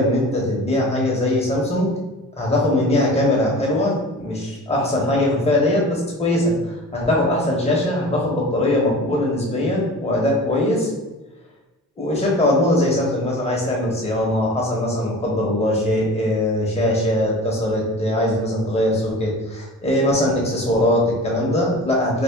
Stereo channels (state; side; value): normal; both; correlation 0.38